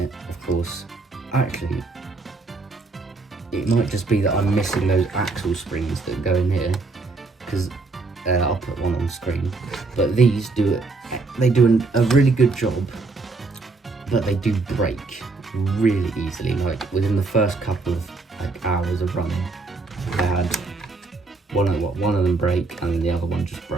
of course, actually, it might just be that I'm missing those axle springs that go in here, because I'll put one on screen. But these do it, they do a really good job, but they do break really easily. Like within the first couple of hours of running, I had one of them break, and then the other one just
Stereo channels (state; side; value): quieter; left; 3.7 dB